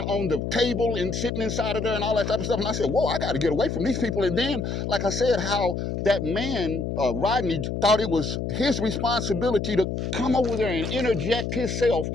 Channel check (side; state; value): left; noise; hum, 3 dB below the sound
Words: on the table and sitting inside of there and all that type of stuff. And I said, whoa, I got to get away from these people. And then, like I said, how that man, Rodney, thought it was his responsibility to come over there and interject himself